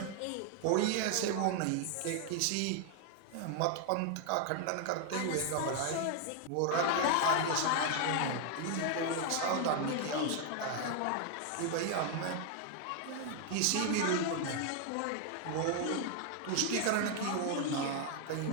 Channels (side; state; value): both; different; correlation 0.00